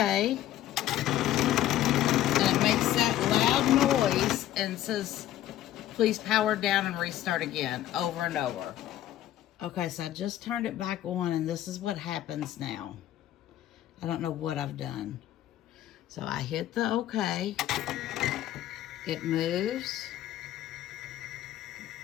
and it makes that loud noise and says, please power down and restart again, over and over. Okay, so I just turned it back on, and this is what happens now. I don't know what I've done. So I hit the OK. It moves,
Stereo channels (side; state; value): right; quieter; 13.1 dB